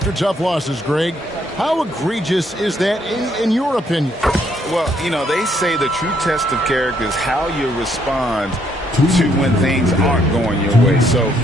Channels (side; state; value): both; normal; correlation 0.71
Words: tough losses, Greg. How egregious is that in your opinion? Well, you know, they say the true test of character is how you respond to when things aren't going your way. So,